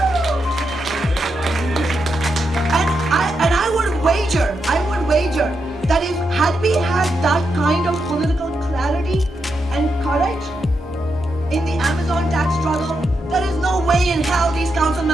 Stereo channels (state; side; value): normal; both; correlation 0.84